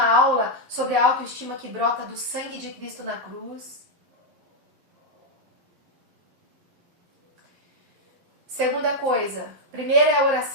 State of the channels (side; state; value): left; late; 11 ms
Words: aula sobre a autoestima que brota do sangue de Cristo na cruz. Segunda coisa, primeira é a